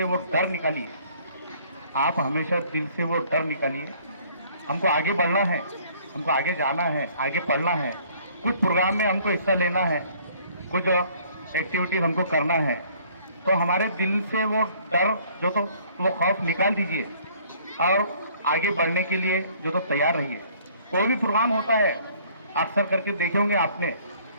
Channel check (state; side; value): inverted; both; correlation -0.58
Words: वो डर निकालिए, आप हमेशा दिल से वो डर निकालिए। हमको आगे बढ़ना है, हमको आगे जाना है, आगे पढ़ना है, कुछ प्रोग्राम में हमको हिस्सा लेना है, कुछ एक्टिविटीज हमको करना है, तो हमारे दिल से वो डर जो तो वो खौफ निकाल दीजिए और आगे बढ़ने के लिए जो तो तैयार रहिए। कोई भी प्रोग्राम होता है, अक्सर करके देखे होंगे आपने